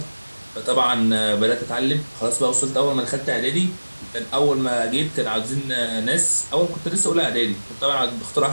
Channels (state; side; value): inverted; both; correlation -1.00